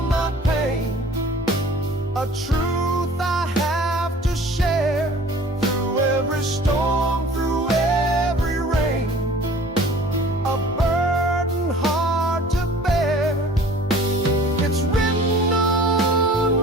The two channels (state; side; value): normal; both; correlation 0.48